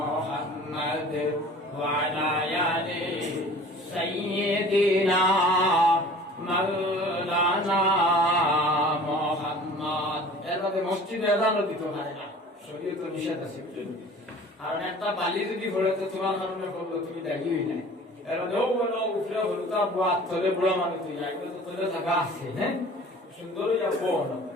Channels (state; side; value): normal; both; correlation 0.46